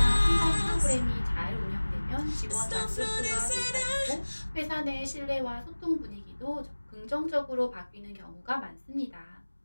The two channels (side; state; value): both; inverted; correlation -1.00